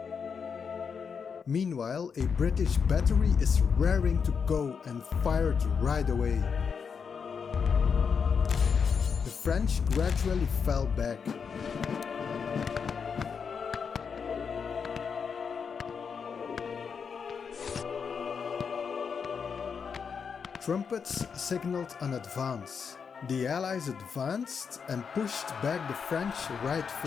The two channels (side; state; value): right; quieter; 6.2 dB